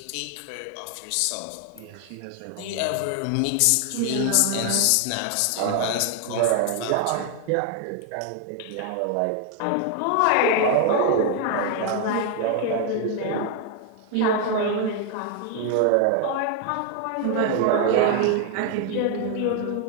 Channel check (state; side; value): different; both; correlation 0.00